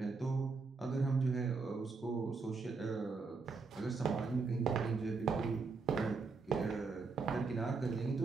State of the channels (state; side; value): quieter; left; 4.4 dB